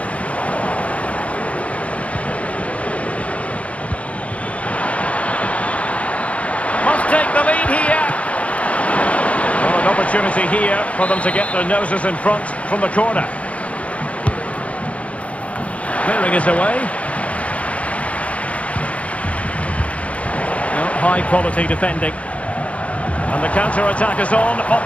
Must take the lead here. Well, an opportunity here for them to get their noses in front from the corner. Clearing is away. No, high quality defending. And the counter-attack is on.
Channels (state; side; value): late; right; 0.064 ms